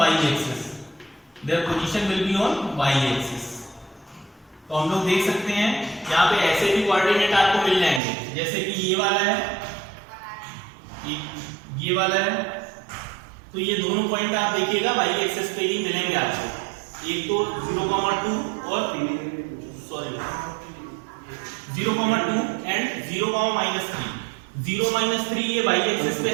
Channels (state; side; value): drops out; left; at 8.0 s